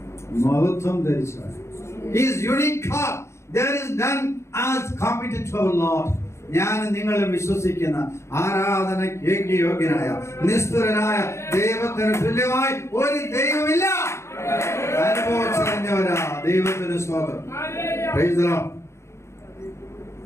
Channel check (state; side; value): late; right; 0.13 ms